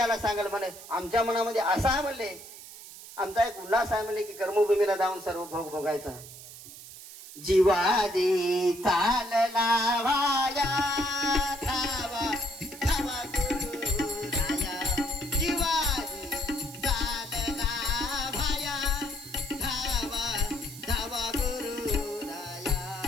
सांगेल म्हणे. आमच्या मनामध्ये असा आहे म्हणले, आमचा एक उल्हास आहे म्हणले की कर्मभूमीला जाऊन सर्व भोग भोगायचा. जीवाजी चालला वाया धावा धावा गुरु राया. जीवाजी चालला वाया धावा धावा गुरु राया.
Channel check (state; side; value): noise; right; hiss, 15 dB below the sound